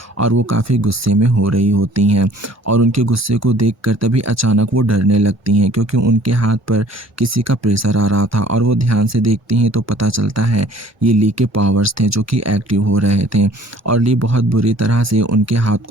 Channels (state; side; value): normal; both; correlation 0.53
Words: और वो काफ़ी गुस्से में हो रही होती हैं और उनके गुस्से को देखकर तभी अचानक वो डरने लगती हैं, क्योंकि उनके हाथ पर किसी का प्रेशर आ रहा था। और वो ध्यान से देखती हैं तो पता चलता है ये ली के पावर्स थे जो कि एक्टिव हो रहे थे। और ली बहुत बुरी तरह से उनके हाथ